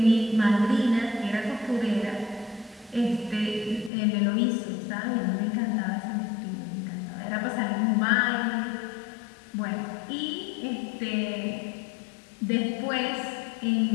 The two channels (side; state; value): right; drops out; at 3.9 s